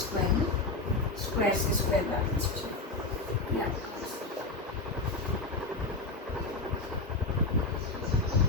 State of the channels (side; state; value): right; quieter; 3.3 dB